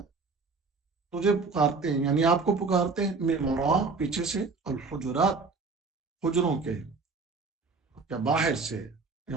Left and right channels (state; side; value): quieter; left; 4.3 dB